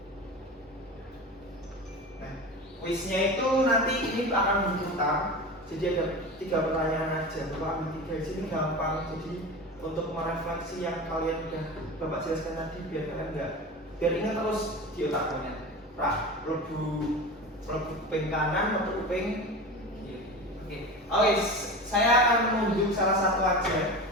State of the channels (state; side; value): normal; both; correlation 0.30